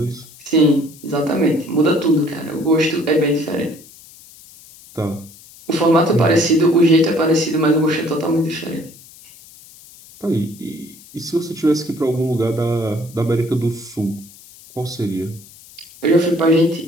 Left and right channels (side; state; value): left; noise; hiss, 22 dB below the sound